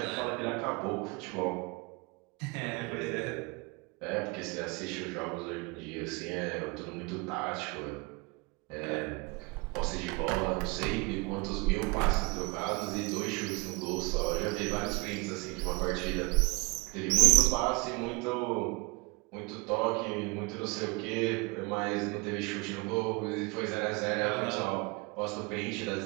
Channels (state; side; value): quieter; left; 27.5 dB